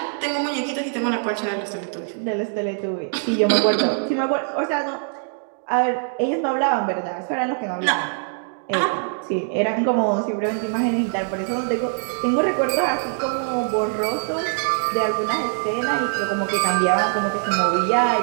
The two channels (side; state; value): left; silent; 58 dB below the other